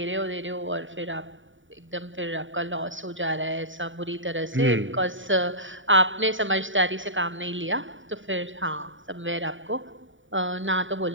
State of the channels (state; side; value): late; left; 0.56 ms